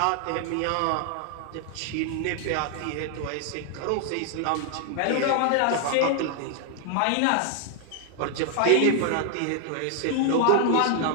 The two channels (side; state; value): both; different; correlation 0.00